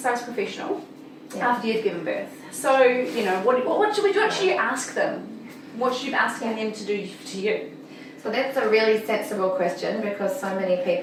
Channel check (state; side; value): identical; both; correlation 1.00